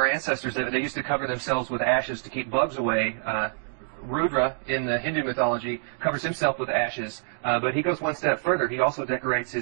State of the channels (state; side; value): silent; left; digital silence